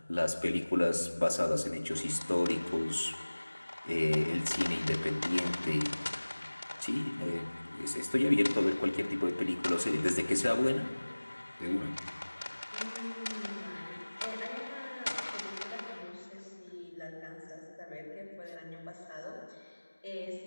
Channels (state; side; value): inverted; both; correlation -1.00